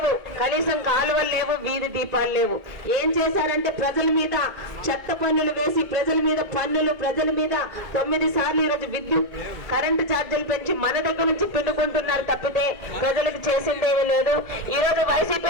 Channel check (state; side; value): late; left; 2.0 ms